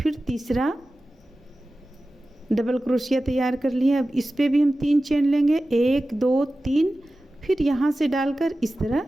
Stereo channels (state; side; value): normal; both; correlation 0.95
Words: तीसरा डबल क्रोशिया तैयार कर लिए। अब इस पे भी हम 3 चेन लेंगे, 1 2 3, फिर यहाँ से डालकर इस तरह